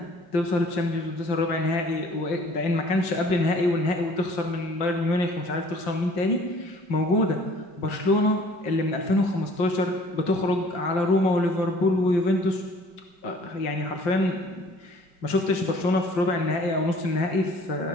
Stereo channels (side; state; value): right; late; 5.7 ms